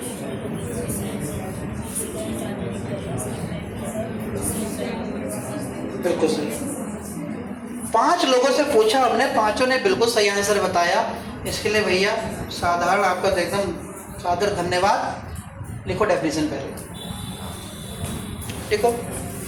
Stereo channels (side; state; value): both; identical; correlation 1.00